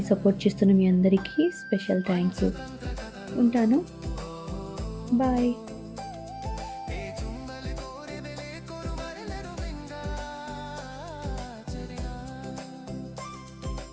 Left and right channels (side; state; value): both; identical; correlation 1.00